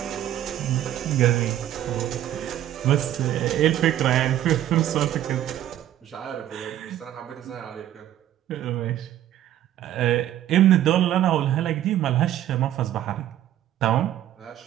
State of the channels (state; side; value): quieter; left; 12.2 dB